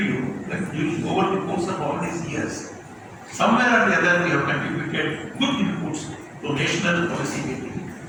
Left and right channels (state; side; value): identical; both; correlation 1.00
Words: you that over the course of all these years, somewhere or the other we have contributed good inputs to national policy making,